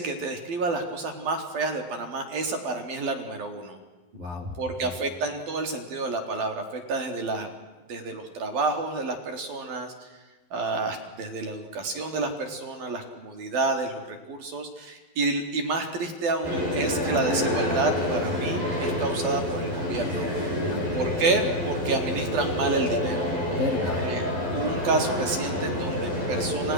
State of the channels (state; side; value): late; left; 12 ms